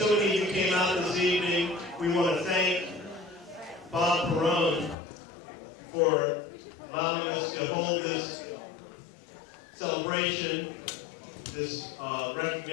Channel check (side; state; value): right; drops out; at 5.0 s